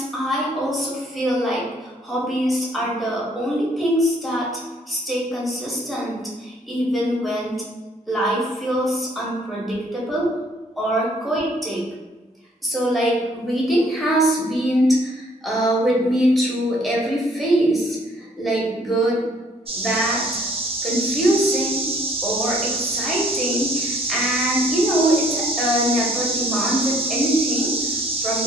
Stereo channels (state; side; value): normal; both; correlation 0.60